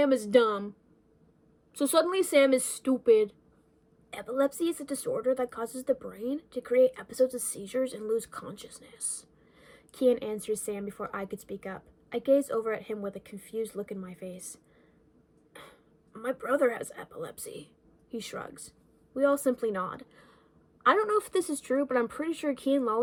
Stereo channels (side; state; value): both; identical; correlation 1.00